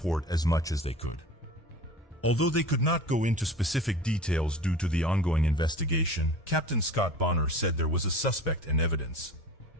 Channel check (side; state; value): both; normal; correlation 0.39